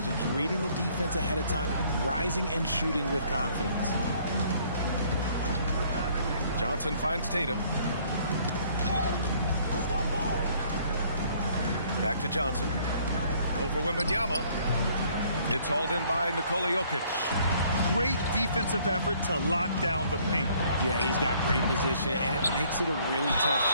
reading the defense ahead of time, rising and shooting with confidence. Johnson finds Tatum. Back to Johnson. Over Wembanyama. It's hauled in by Nikola Jokic. great defensive effort to lock down the paint. Yeah, he's got great position, and it makes it a really tough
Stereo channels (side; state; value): both; inverted; correlation -0.61